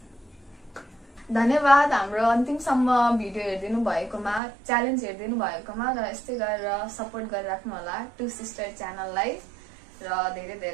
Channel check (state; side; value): drops out; left; at 4.4 s